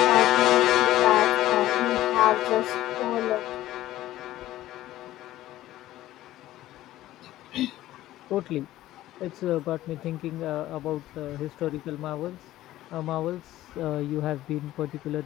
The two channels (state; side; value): quieter; right; 14.9 dB